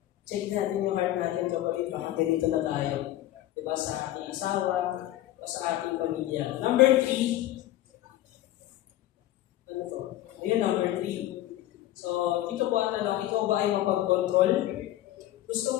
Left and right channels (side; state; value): right; quieter; 14.3 dB